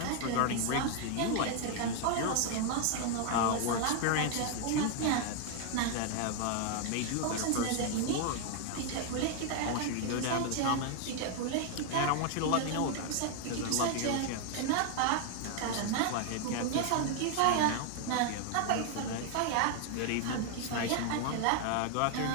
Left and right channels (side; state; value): both; different; correlation 0.00